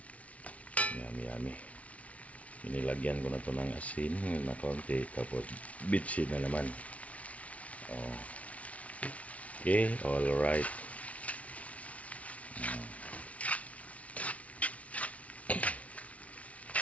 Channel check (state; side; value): late; right; 0.066 ms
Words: Yummy. Inilagyan ko na ito ng asin na kaunti. Tapos bitsin na naman. Okay, alright.